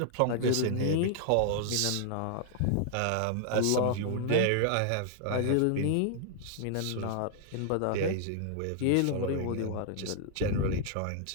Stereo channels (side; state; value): both; different; correlation -0.01